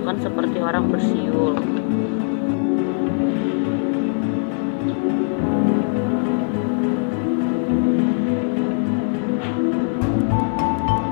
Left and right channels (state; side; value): silent; right; 61 dB below the other